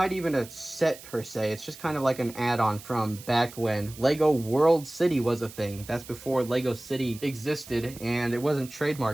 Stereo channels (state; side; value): noise; right; hiss, 17 dB below the sound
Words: even a set per se. It's just kind of like an add-on from back when Lego World City was a thing. That's before Lego City existed, and it wasn't